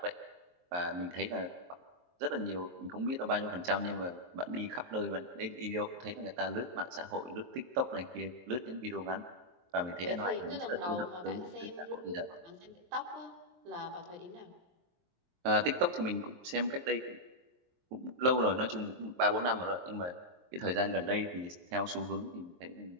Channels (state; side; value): late; left; 23 ms